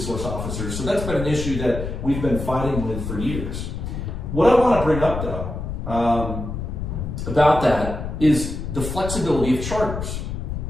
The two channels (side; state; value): left; noise; rumble, 5 dB below the sound